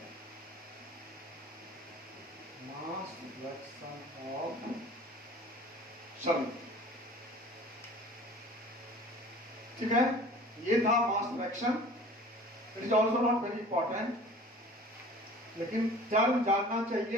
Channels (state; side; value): normal; both; correlation 0.45